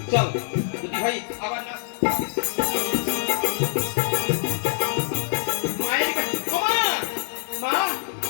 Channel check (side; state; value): right; silent; 59 dB below the other